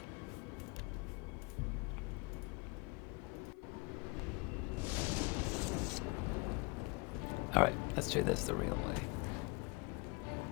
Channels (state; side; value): quieter; right; 29.4 dB